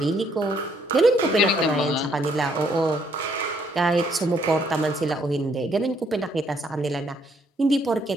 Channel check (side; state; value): both; normal; correlation 0.68